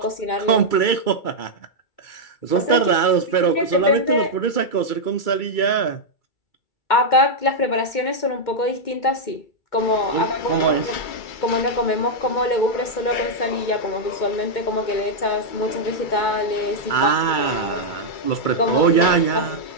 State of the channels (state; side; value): late; right; 2.3 ms